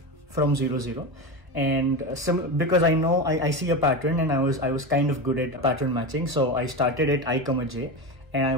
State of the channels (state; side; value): late; left; 1.4 ms